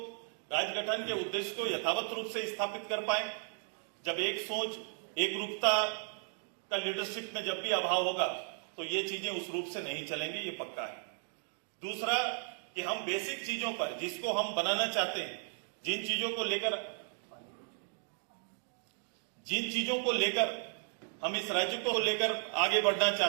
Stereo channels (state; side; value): silent; left; 54 dB below the other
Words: राज्य गठन के उद्देश्य को यथावत रूप से स्थापित कर पाए। जब एक सोच, एक रूपता का लीडरशिप में जब भी अभाव होगा तो ये चीजें उस रूप से नहीं चलेंगी, ये पक्का है। दूसरा कि हम बेसिक चीजों पर, जिसको हम बनाना चाहते हैं, जिन चीजों को लेकर हम इस राज्य को लेकर आगे बढ़ना